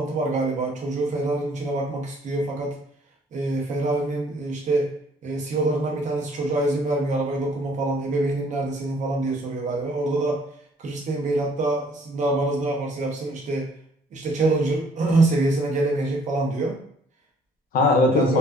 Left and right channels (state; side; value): normal; both; correlation 0.60